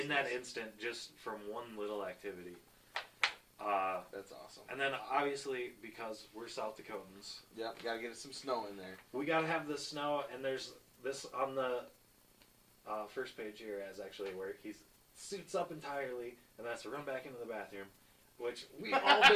that instant, just from one little activity. That's awesome. And then obviously, because we're South Dakotans, yep, gotta get some snow in there. We gotta have the snow, and there's this on the first page here as actually where he suits up entirely and has to run back into the bathroom, which we've all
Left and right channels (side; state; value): both; identical; correlation 1.00